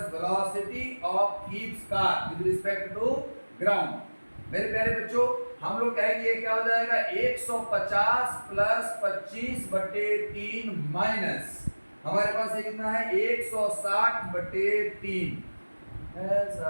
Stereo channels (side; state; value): both; inverted; correlation -1.00